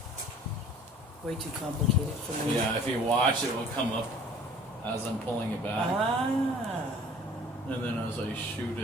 Way too complicated for me. yeah, if you watch, it will come up as I'm pulling it back, Ah. and then as I shoot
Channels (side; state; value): both; normal; correlation 0.50